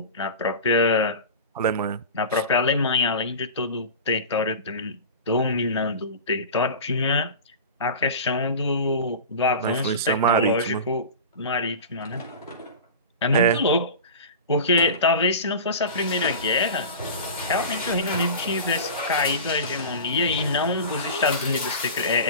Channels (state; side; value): inverted; both; correlation -0.32